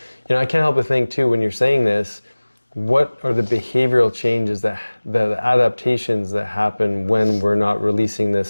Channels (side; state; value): both; inverted; correlation -1.00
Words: know, I can't help but think too, when you're saying this, what are the behavioral changes, the adaptations that happen when we're not releasing